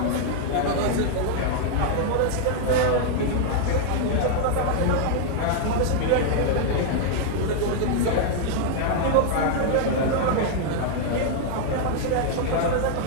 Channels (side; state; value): both; different; correlation 0.00